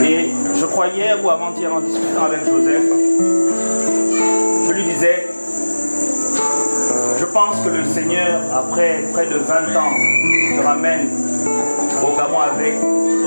Et je crois hier ou avant-hier en discutant avec Joseph, je lui disais, je pense que le Seigneur, après près de 20 ans, te ramène au Gabon avec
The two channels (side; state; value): both; inverted; correlation -1.00